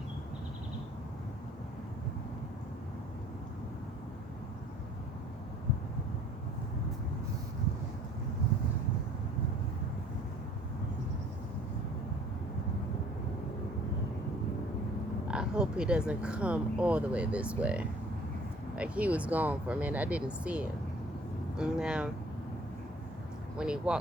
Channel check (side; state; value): both; normal; correlation 0.54